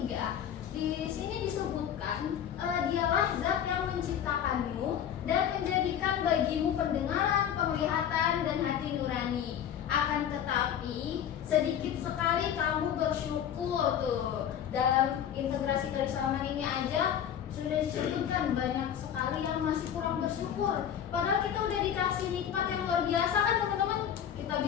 Di sini disebutkan dialah zat yang menciptakanmu dan menjadikan bagimu pendengaran, penglihatan, dan hati nurani. Akan tetapi sedikit sekali kamu bersyukur tuh. Dalam integrasi keislaman ini aja sudah disebutkan banyak sekali yang masih kurang bersyukur. Padahal kita udah dikasih nikmat yang luar biasa kan teman-teman. Kita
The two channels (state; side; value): quieter; right; 9.4 dB